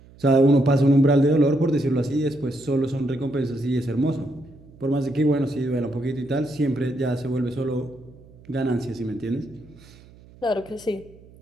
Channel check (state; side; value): noise; right; hum, 24 dB below the sound